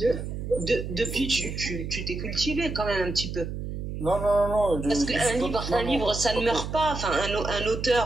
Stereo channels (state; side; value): noise; right; hum, 6 dB below the sound